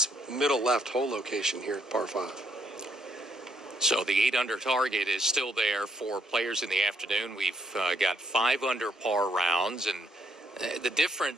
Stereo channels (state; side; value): normal; both; correlation 0.73